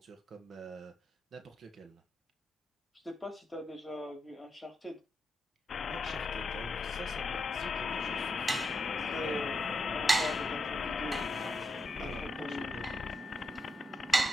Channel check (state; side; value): normal; both; correlation 0.84